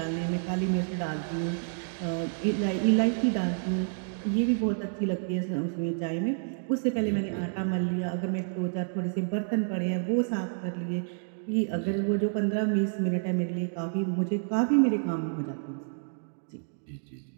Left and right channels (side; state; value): left; silent; digital silence